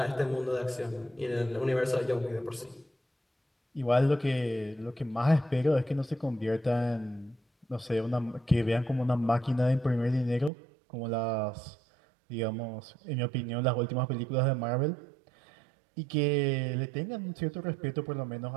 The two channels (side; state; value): left; drops out; at 10.5 s